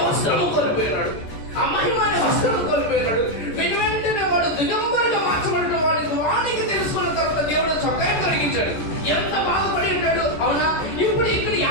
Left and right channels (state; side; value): late; right; 14 ms